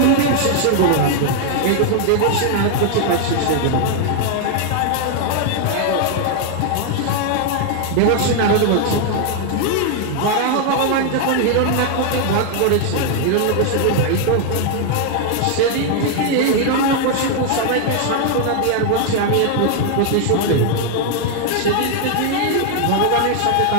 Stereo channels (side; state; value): both; different; correlation 0.00